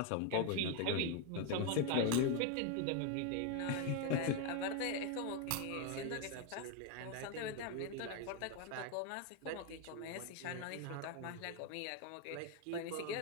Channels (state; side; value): different; both; correlation 0.01